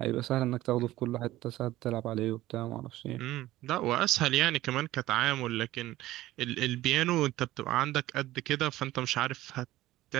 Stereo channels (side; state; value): left; quieter; 16.1 dB